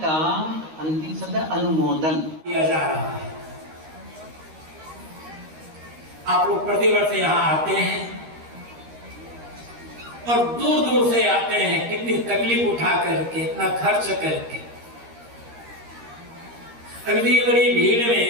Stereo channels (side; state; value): left; late; 13 ms